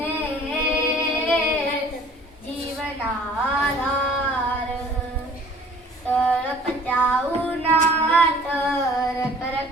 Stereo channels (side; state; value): both; normal; correlation 0.52